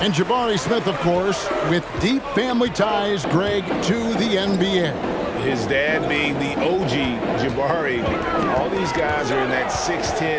And Jabari Smith, of course, with deep family ties, Greg, to the NBA. His dad being the OG Jabari. All these guys are in that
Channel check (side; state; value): both; identical; correlation 1.00